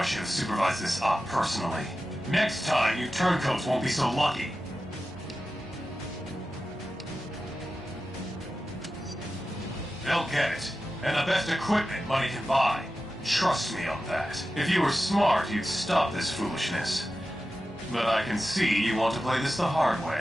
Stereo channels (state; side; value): normal; both; correlation 0.93